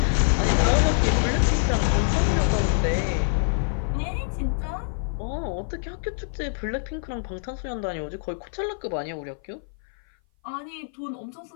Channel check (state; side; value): silent; right; 57 dB below the other